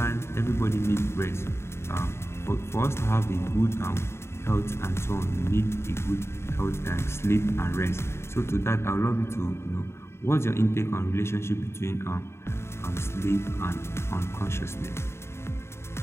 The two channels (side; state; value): right; late; 0.12 ms